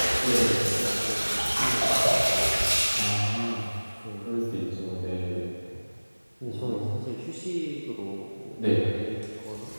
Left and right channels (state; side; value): inverted; both; correlation -1.00